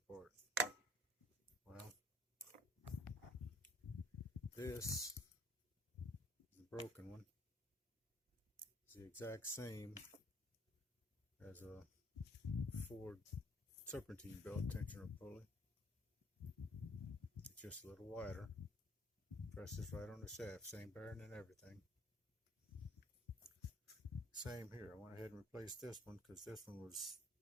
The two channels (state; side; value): normal; both; correlation 0.58